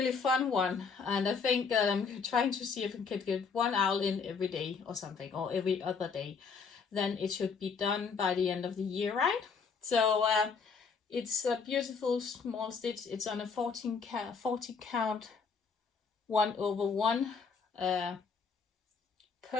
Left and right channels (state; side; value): quieter; right; 5.5 dB